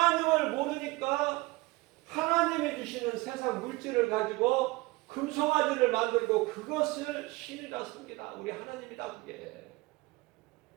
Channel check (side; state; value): left; quieter; 21.9 dB